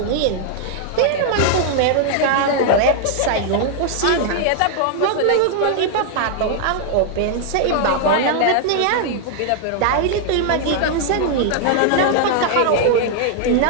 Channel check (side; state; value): both; different; correlation 0.00